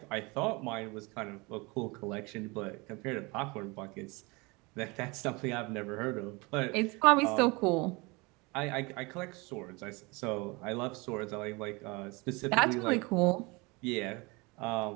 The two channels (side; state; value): left; quieter; 26.3 dB